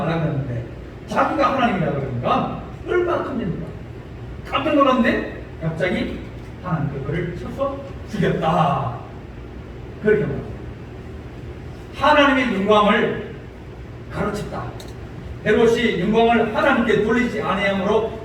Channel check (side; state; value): both; identical; correlation 1.00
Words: 그랬는데 자기가 하나님이라 그러니까 얼마나 큽니까? 깜짝 놀랐는데 갑자기 하나님 그를 쳐서 죽였다. 그렇게 말합니다. 하나님의 영광을 가르쳤다. 헤롯이 영광을 하나님께 돌리지 아니하므로